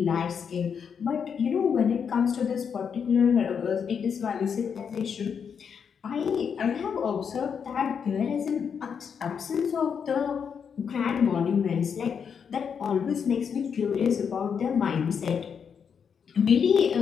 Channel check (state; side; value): quieter; right; 6.9 dB